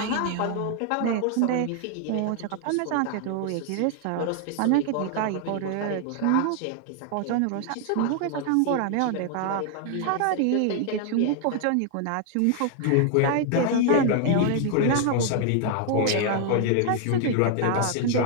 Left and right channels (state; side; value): different; both; correlation 0.00